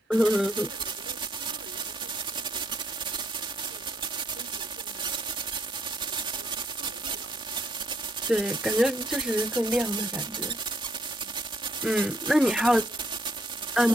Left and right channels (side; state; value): both; normal; correlation 0.69